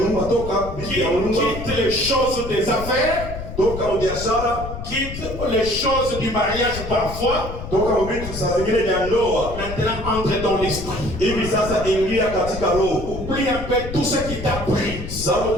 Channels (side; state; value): left; noise; rumble, 9 dB below the sound